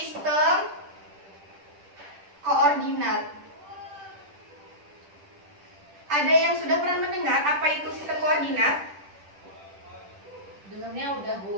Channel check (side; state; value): left; late; 10 ms